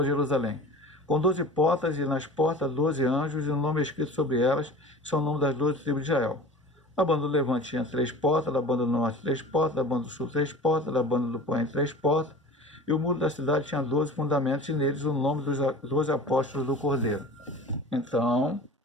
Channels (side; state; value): both; normal; correlation 0.39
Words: Jerusalém, com 12 portas, e nas portas 12 anjos, e o nome escrito sobre elas são o nome das 12 tribos de Israel. A banda do Levante tinha 3 portas, da banda do Norte 3 portas, da banda do Sul 3 portas, da banda do Poente 3 portas, E o muro da cidade tinha 12 fundamentos, e neles o nome dos 12 apóstolos do Cordeiro. Então,